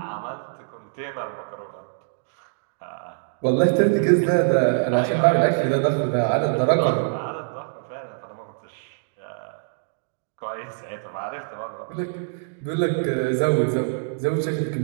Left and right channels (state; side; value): silent; left; digital silence